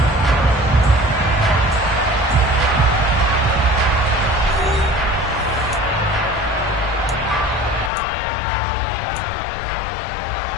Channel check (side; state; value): right; drops out; at 7.9 s